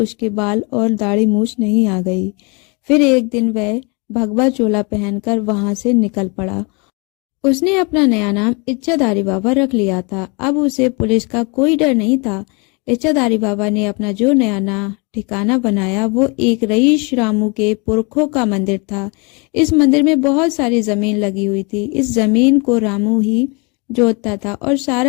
बाल और दाढ़ी मूछ नहीं आ गई। फिर एक दिन वह भगवा चोला पहनकर वहां से निकल पड़ा। उसने अपना नया नाम इच्छाधारी बाबा रख लिया था। अब उसे पुलिस का कोई डर नहीं था। इच्छाधारी बाबा ने अपना जो नया ठिकाना बनाया वो एक रईस रामू के पुरखों का मंदिर था। इस मंदिर में बहुत सारी जमीन लगी हुई थी। इस जमीन को रामू ही जोतता था और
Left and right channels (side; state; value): right; quieter; 31.2 dB